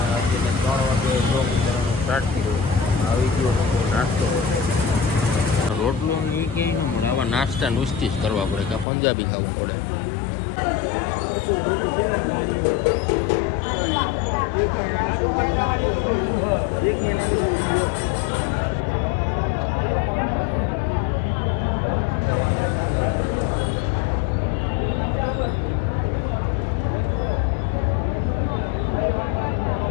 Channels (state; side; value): drops out; right; at 8.8 s